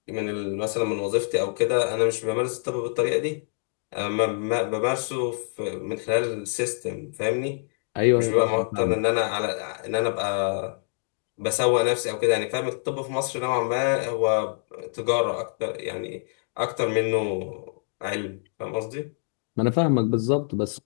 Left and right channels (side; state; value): right; silent; digital silence